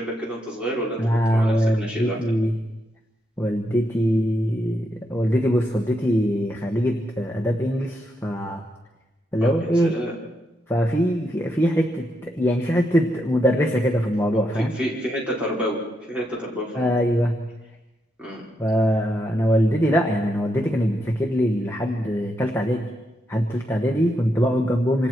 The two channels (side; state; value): both; normal; correlation 0.82